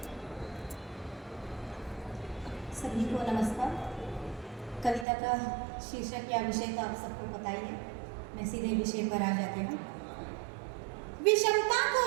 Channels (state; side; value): drops out; left; at 5.1 s